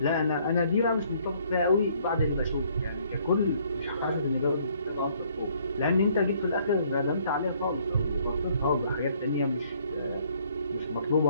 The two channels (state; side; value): inverted; both; correlation -0.64